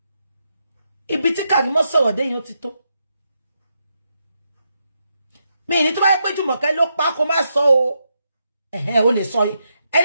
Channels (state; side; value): inverted; both; correlation -0.83